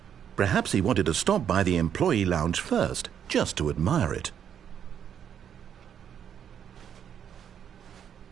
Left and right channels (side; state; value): left; quieter; 8.8 dB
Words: Perhaps he wanted to stop by the employee lounge first, just to admire it.